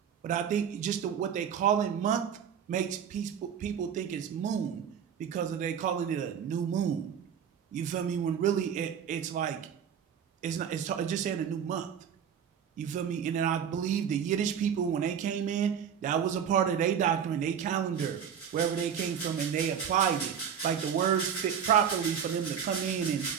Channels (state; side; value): quieter; left; 8.1 dB